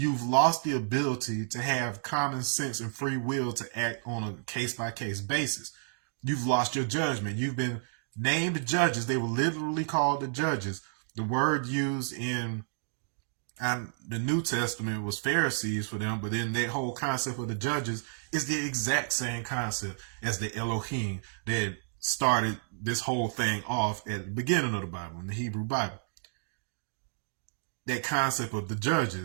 lost the ability to have common sense and free will to act on a case-by-case basis. You've lost your judgment. You've been named judges. They were literally called the judges. The word used in the New Testament was Pharisees for them, but then that whole concept of the judges is the exact same concept as the Elohim that started this whole thing off at the beginning of the Bible, in the Hebrew Bible. That concept of the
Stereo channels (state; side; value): silent; left; digital silence